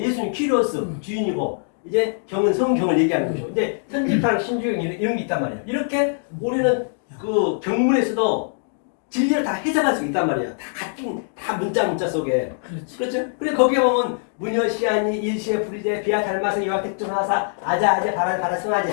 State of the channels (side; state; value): right; silent; digital silence